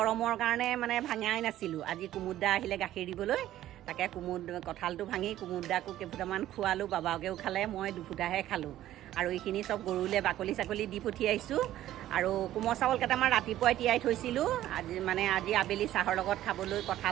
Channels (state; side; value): quieter; left; 13.4 dB